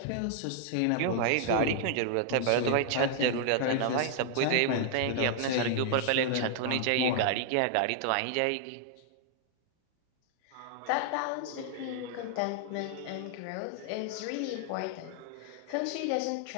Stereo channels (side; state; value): both; different; correlation -0.01